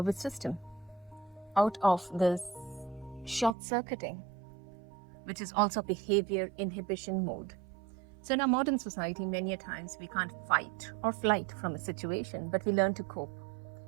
system out of this short-circuiting, which is also behavior inhibition mode. So in our modern society, many a times we can't fight or flight from a situation, but we learn to cope,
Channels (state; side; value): drops out; left; at 3.6 s